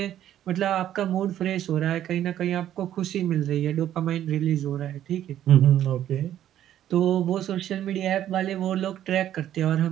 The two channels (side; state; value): left; quieter; 11.5 dB